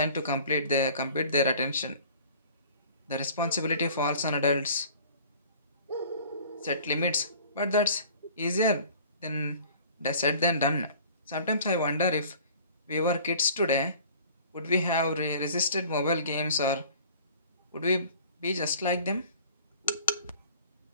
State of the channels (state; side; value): inverted; both; correlation -0.48